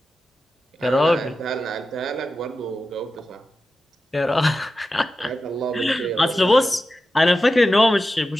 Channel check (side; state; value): both; normal; correlation 0.92